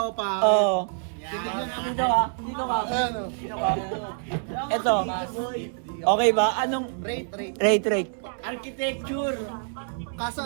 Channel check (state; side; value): silent; left; digital silence